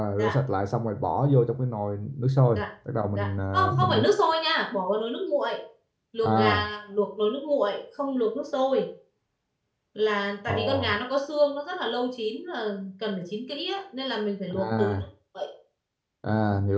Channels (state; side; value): identical; both; correlation 1.00